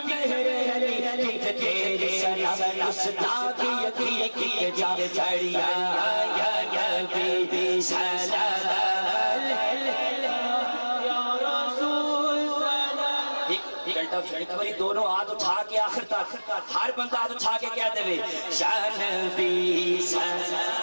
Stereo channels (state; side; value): inverted; both; correlation -1.00